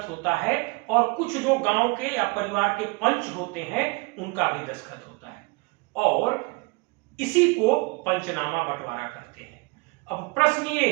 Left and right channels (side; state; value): left; quieter; 27.3 dB